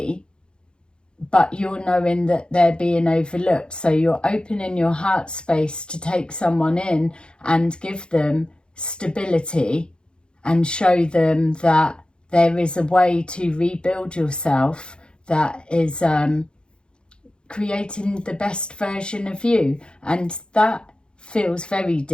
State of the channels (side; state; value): right; late; 0.051 ms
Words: But you're knowing that they're being overlooked. So you're opening your heart space to take someone in and give them stability and show them that there is a way to rebuild yourself that is creating the best version of you. And that feels very